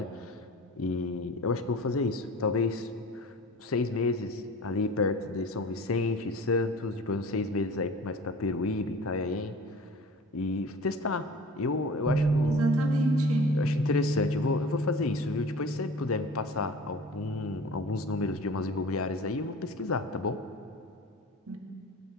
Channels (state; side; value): normal; both; correlation 0.40